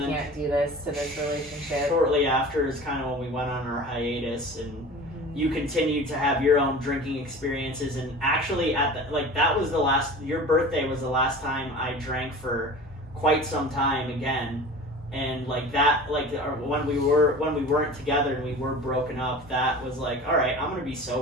do this to this relationship. Shortly after is kind of when we went on our hiatus, and you continued to have your own drinking experiences, and actually that was your birthday was the last time I drank for quite some time again. And when we weren't together and we were broken up, that was like, all right, I'm gonna be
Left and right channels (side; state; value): both; normal; correlation 0.38